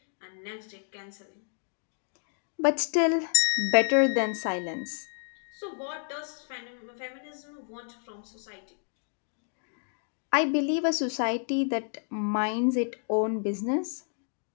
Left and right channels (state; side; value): silent; right; 58 dB below the other